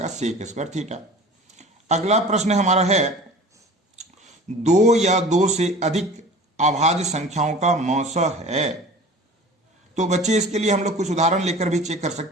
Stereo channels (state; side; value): normal; both; correlation 0.41